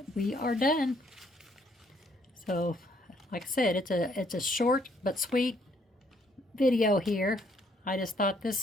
we are done. So, like I said, it's a short but sweet video here. I just thought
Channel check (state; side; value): normal; both; correlation 0.67